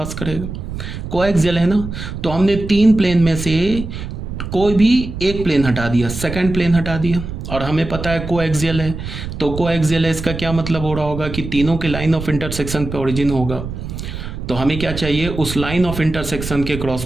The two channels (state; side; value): noise; right; rumble, 7 dB below the sound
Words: करेगा। कोएक्सियल है ना, तो हमने तीन प्लेन में से कोई भी एक प्लेन हटा दिया, सेकंड प्लेन हटा दिया, और हमें पता है कोएक्सियल है। तो कोएक्सियल है, इसका क्या मतलब हो रहा होगा कि तीनों के लाइन ऑफ इंटरसेक्शन पे ओरिजिन होगा। तो हमें क्या चाहिए, उस लाइन ऑफ इंटरसेक्शन के